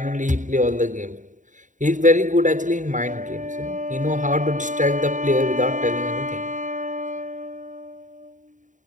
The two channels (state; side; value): late; left; 0.37 ms